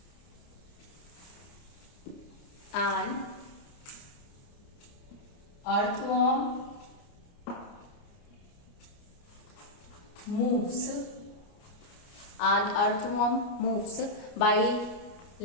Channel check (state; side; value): late; right; 29 ms